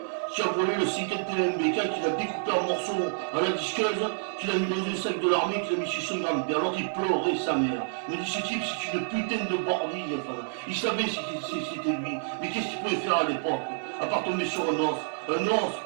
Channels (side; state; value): left; silent; digital silence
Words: qui a volé le 51 MBK, qu'il a découpé en morceaux à la disqueuse, qu'il a mis dans un sac de l'armée, qu'il a mis chez son grand-père. Alors il pleurait sa mère. Il me dit, ce type, c'est une putain de bordille. Enfin, il savait si c'était lui. Mais qu'est-ce qu'il pouvait faire à l'époque? À part tomber sur un os. Un os,